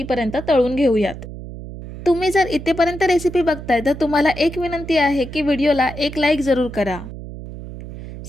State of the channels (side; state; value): right; noise; hum, 12 dB below the sound